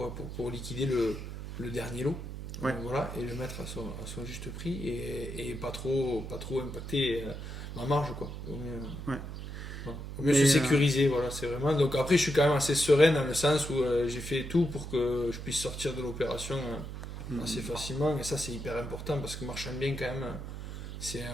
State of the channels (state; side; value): noise; right; hum, 8 dB below the sound